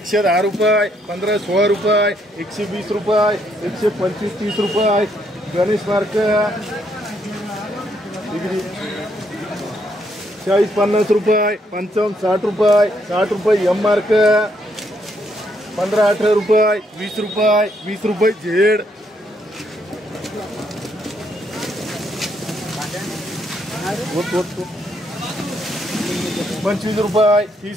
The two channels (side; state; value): both; normal; correlation 0.73